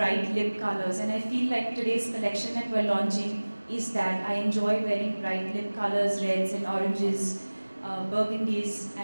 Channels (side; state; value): both; inverted; correlation -1.00